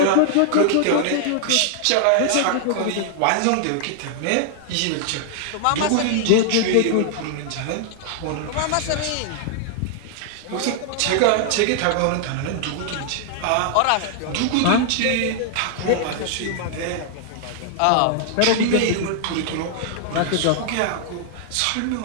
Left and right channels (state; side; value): different; both; correlation 0.00